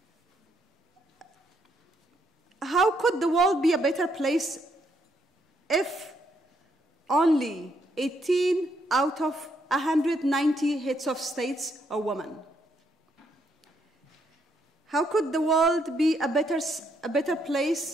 How could the world be a better place if only 18 out of 190 heads of states are women? How could the world be a better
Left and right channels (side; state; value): both; normal; correlation 0.74